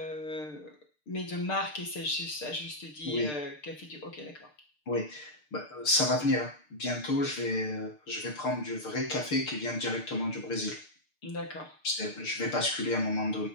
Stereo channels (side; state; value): right; late; 6.7 ms